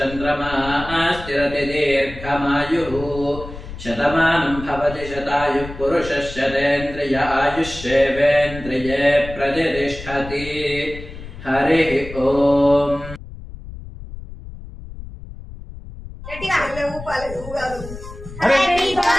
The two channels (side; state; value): left; noise; rumble, 13 dB below the sound